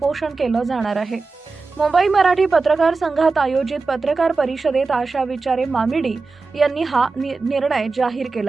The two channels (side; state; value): left; quieter; 4.0 dB